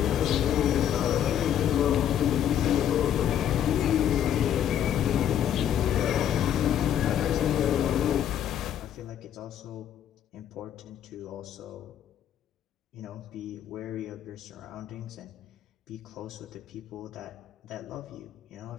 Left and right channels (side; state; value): right; quieter; 10.0 dB